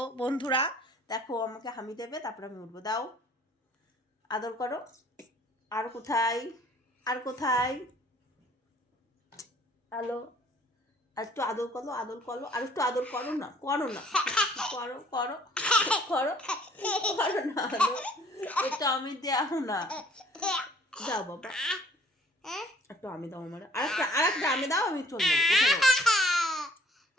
বন্ধুরা দেখো, আমাকে হামি দেবে, তারপর আমি উঠবো। দাও, আদর করো। আর কোথায়, আর কোথায়? হ্যালো, আর একটু আদর করো, আদর করো, আর একটু আদর করো না, করো না, করো করো করো, করো না আদর। একটু আমি দেও না, দাও বাবা, একটু আমি দাও আমার, আর একটা আমি দাও, আমি চলে যাবো, উঠে যাবো।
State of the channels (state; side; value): normal; both; correlation 0.57